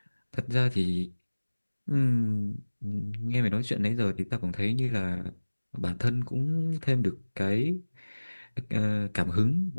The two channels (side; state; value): both; inverted; correlation -1.00